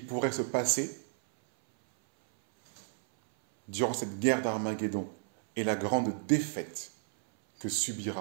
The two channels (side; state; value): left; silent; 56 dB below the other